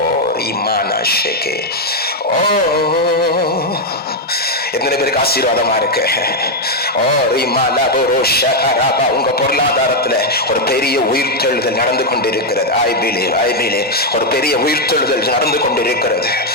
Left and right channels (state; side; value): normal; both; correlation 0.02